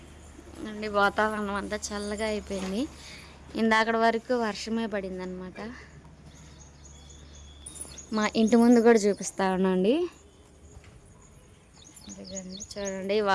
అండి. వాతావరణం అంతా చల్లగా అయిపోయింది. ఇందాకటి వరకు వర్షమే పడింది అనమాట. మా ఇంటి ముందు కూడా చూపిస్తా ఉన్నాండి. చూడండి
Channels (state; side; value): identical; both; correlation 1.00